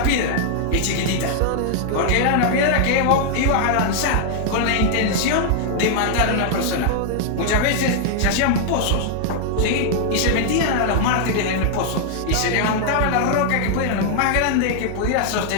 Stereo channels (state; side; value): different; both; correlation 0.00